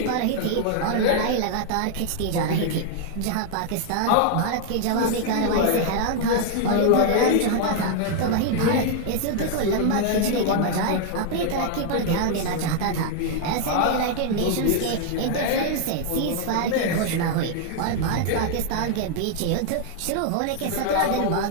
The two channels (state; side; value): different; both; correlation 0.00